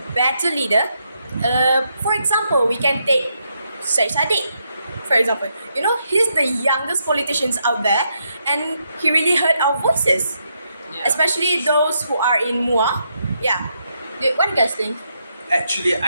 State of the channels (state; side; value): inverted; both; correlation -0.79